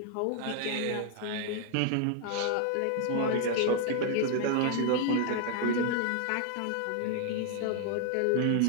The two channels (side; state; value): both; different; correlation 0.00